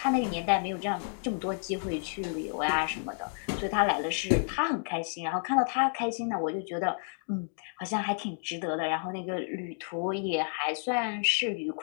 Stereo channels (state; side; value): silent; right; 57 dB below the other